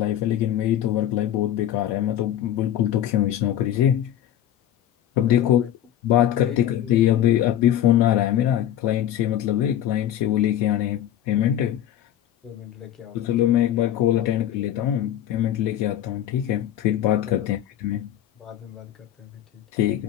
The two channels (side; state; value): right; quieter; 11.4 dB